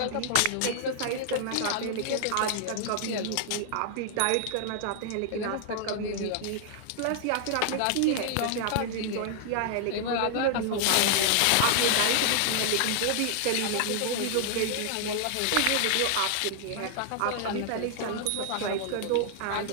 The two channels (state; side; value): different; both; correlation -0.01